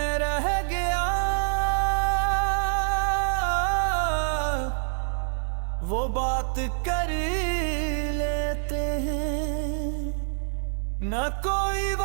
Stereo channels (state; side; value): silent; left; digital silence